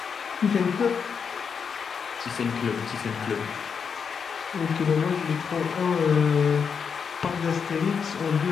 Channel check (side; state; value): right; quieter; 6.4 dB